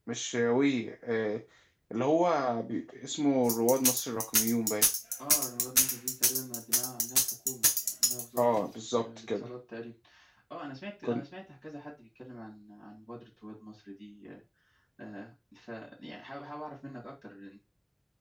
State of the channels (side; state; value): both; identical; correlation 1.00